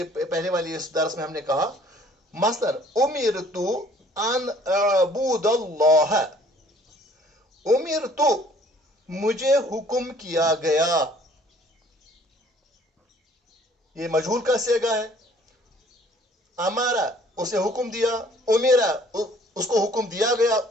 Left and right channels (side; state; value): both; normal; correlation 0.56